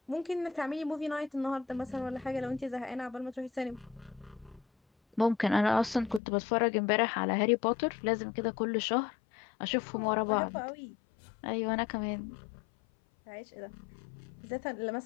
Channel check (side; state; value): right; drops out; at 6.2 s